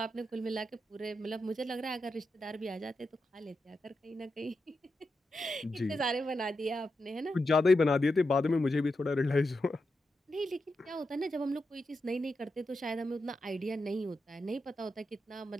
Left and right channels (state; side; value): normal; both; correlation 0.87